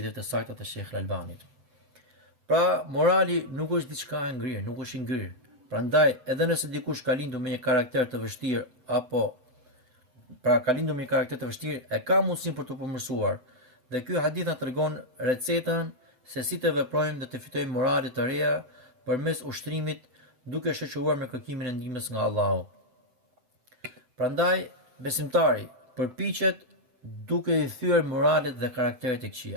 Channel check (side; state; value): left; late; 7.9 ms